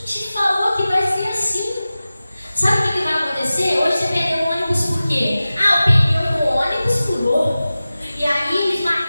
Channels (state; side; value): inverted; both; correlation -0.96